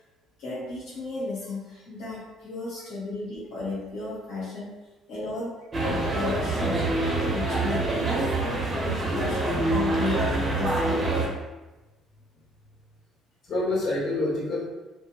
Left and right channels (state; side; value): normal; both; correlation 0.61